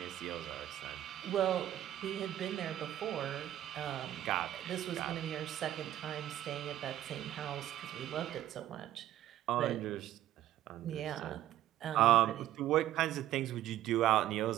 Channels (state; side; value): quieter; left; 12.9 dB